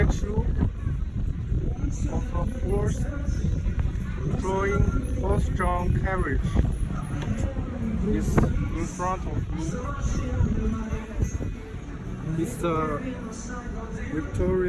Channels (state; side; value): identical; both; correlation 1.00